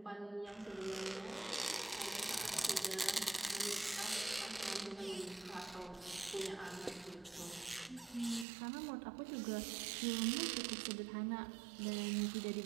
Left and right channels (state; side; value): drops out; left; at 8.5 s